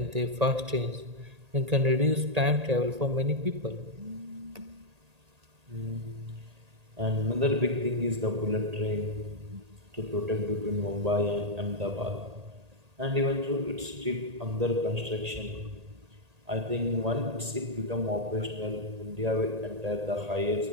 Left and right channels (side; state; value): left; late; 1.8 ms